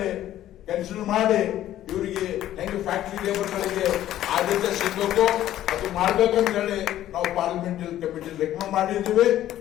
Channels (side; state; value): right; quieter; 12.8 dB